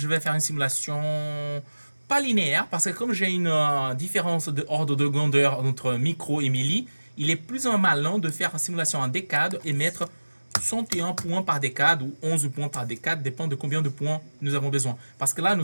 vais faire une simulation pas linéaire, parce que comme j'ai une différence d'ordre de grandeur entre micro et milli, il est plus ou malin de faire une simulation en décade et mettre 61 points par décade ou 11 points par décade, dépend de combien de points nous avons besoin. Parce que là,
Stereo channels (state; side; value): inverted; both; correlation -1.00